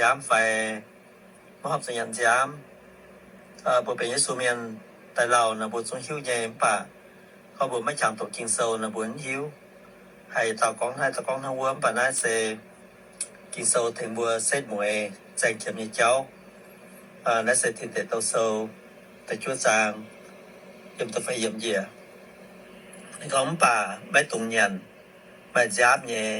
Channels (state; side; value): identical; both; correlation 1.00